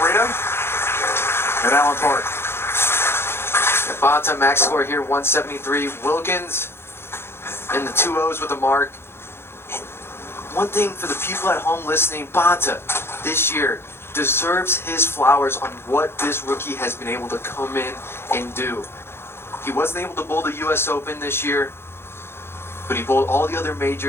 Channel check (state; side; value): late; right; 0.12 ms